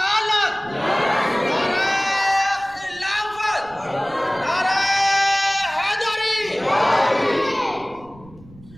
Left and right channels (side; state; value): right; noise; rumble, 23 dB below the sound